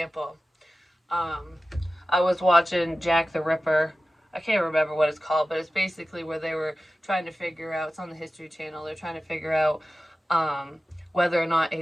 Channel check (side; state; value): both; normal; correlation 0.95